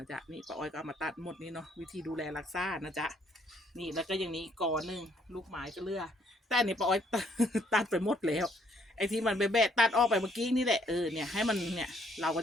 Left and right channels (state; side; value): normal; both; correlation 0.67